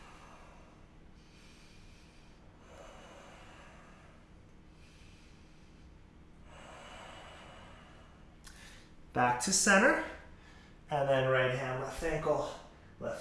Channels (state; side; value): identical; both; correlation 1.00